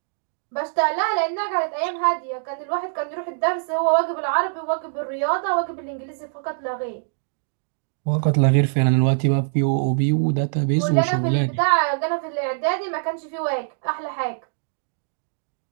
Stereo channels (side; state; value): left; silent; digital silence